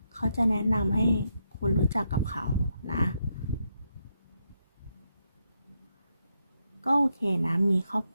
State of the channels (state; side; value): inverted; both; correlation -0.80